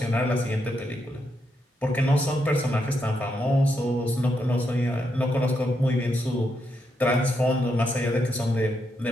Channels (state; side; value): normal; both; correlation 0.81